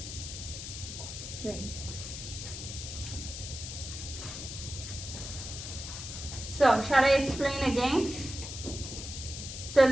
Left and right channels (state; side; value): noise; left; hiss, 8 dB below the sound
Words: Great. So, shall I explain again? So,